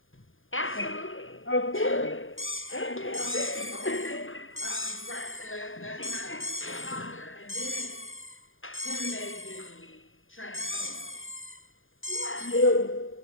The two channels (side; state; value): right; late; 0.59 ms